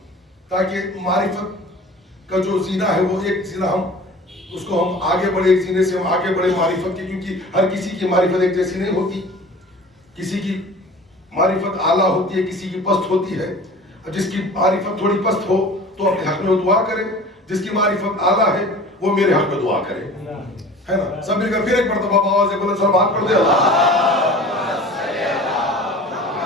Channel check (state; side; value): normal; both; correlation 0.42